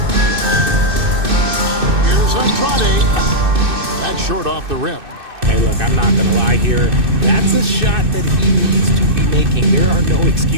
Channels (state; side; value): late; left; 2.6 ms